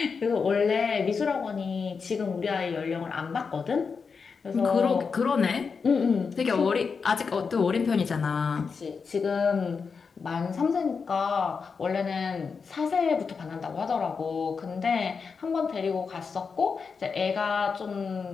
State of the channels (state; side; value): quieter; right; 5.4 dB